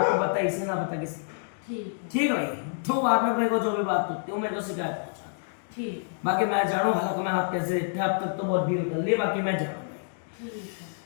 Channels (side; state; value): right; silent; digital silence